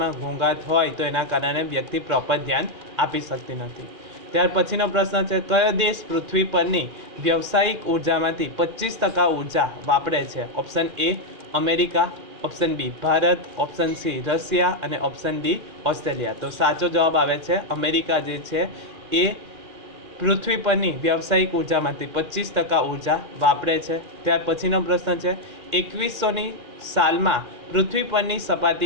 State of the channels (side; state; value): left; late; 2.4 ms